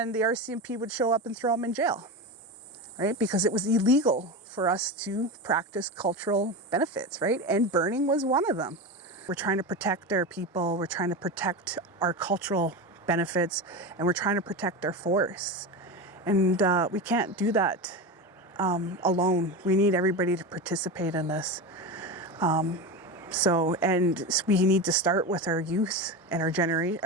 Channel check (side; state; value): both; normal; correlation 0.22